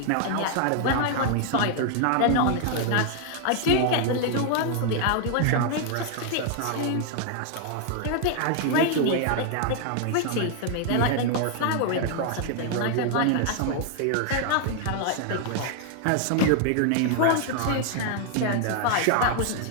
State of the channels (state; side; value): different; both; correlation 0.00